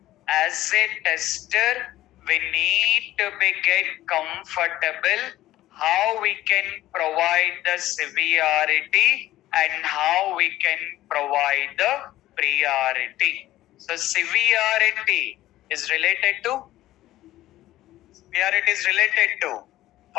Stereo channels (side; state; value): right; quieter; 15.1 dB